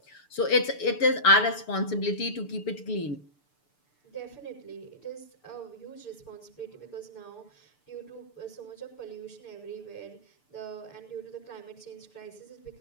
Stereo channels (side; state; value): right; late; 6.8 ms